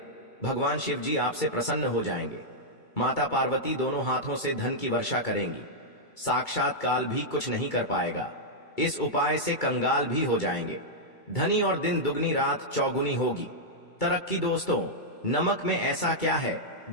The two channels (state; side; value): late; right; 2.3 ms